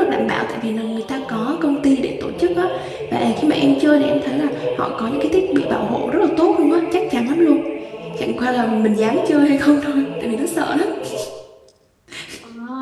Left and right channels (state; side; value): identical; both; correlation 1.00